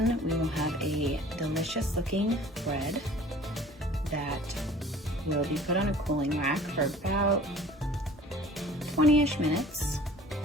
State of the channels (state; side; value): normal; both; correlation 0.48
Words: we will have a delicious looking bread that will be put on a cooling rack for about 20-ish minutes,